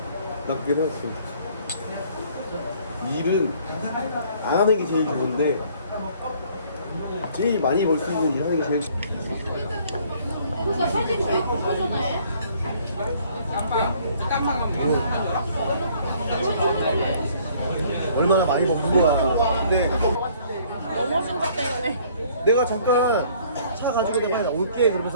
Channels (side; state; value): both; inverted; correlation -0.59